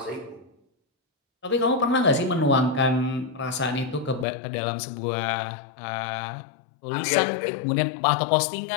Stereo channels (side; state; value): right; drops out; at 4.2 s